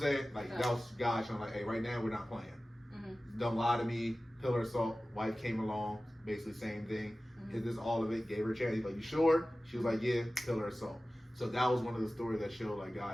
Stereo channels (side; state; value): both; normal; correlation 0.96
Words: Like that was God showing like, "Hey, right now we're not playing. Don't lie to me." Pillar of salt. Wife came along, basically same thing. Is this all of it? Gave her a chance. He's like, "You sure?" She was like, "Yeah." Pillar of salt. So that was one of the stories that showed like